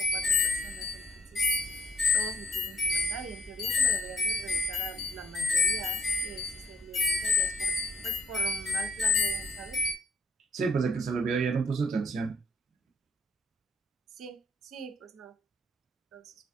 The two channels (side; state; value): both; normal; correlation 0.70